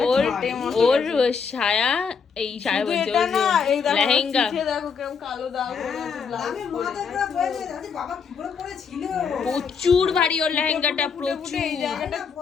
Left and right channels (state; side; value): quieter; right; 6.0 dB